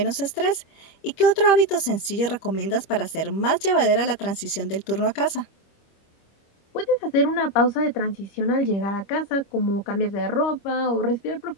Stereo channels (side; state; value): right; late; 25 ms